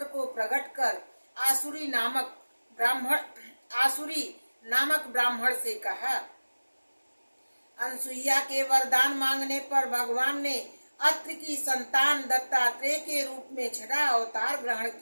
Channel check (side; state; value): both; inverted; correlation -1.00